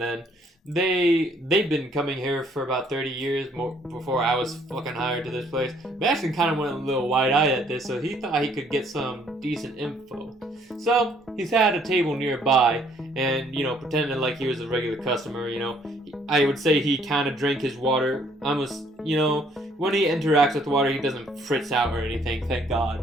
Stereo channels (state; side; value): normal; both; correlation 0.64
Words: then. They've been coming here for about 30 years more before I was fucking hired to this place. Bastion kind of went a little wide-eyed at this, so he thought he could get some decent info. So he's had a table nearby, and pretending like he was a regular customer. I would say he kind of drank his water. Almost, when he interacts with water, he doesn't fritz out or anything. Thank